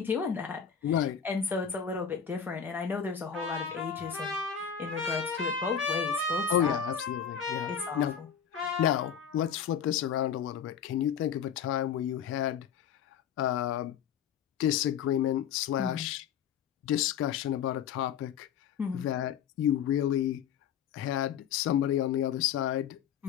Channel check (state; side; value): quieter; right; 8.0 dB